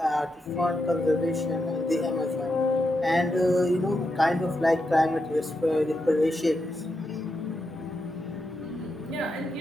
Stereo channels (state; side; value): normal; both; correlation 0.85